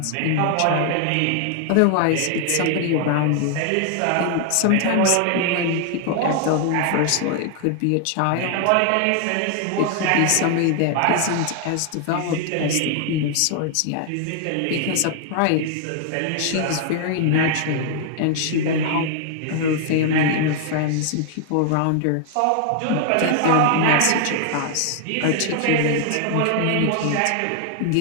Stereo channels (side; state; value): both; different; correlation 0.00